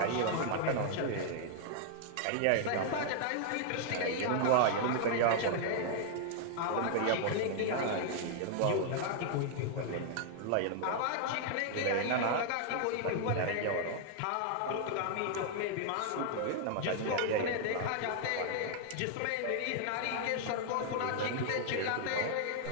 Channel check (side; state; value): both; different; correlation 0.00